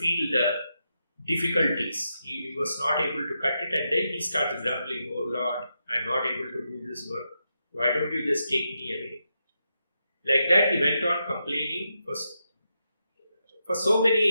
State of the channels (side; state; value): both; inverted; correlation -0.85